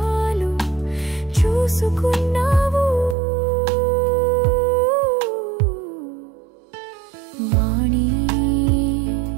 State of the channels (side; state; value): left; drops out; at 3.2 s